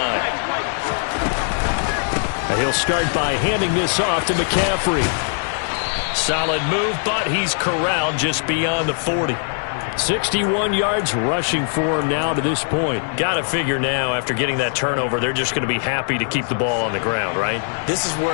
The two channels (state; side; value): silent; right; digital silence